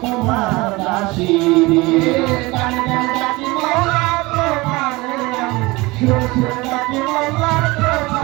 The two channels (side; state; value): left; quieter; 22.6 dB